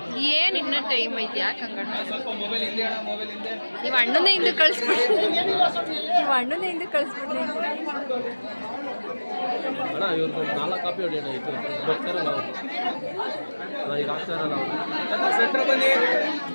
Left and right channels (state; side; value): inverted; both; correlation -1.00